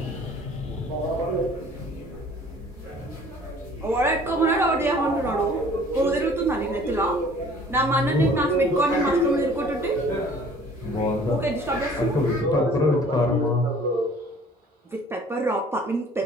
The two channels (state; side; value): normal; both; correlation 0.52